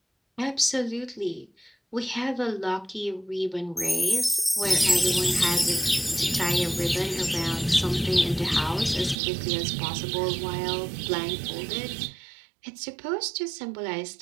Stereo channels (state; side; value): drops out; left; at 9.2 s